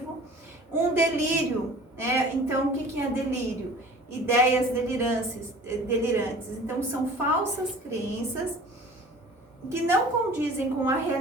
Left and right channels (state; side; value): normal; both; correlation 0.45